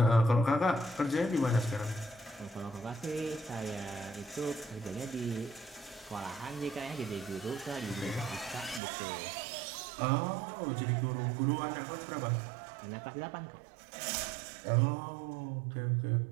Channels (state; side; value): drops out; left; at 8.8 s